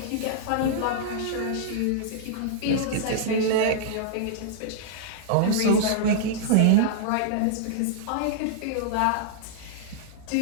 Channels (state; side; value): different; both; correlation -0.02